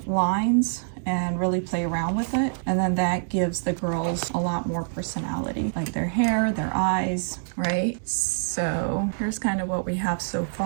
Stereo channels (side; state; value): left; silent; digital silence